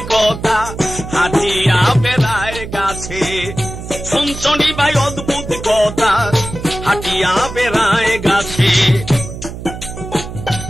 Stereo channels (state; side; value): noise; right; hum, 10 dB below the sound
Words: কথা হাঁটিয়া বেড়ায় গাছে শুনছনি ভাই অদ্ভুত কথা হাঁটিয়া বেড়ায় গাছে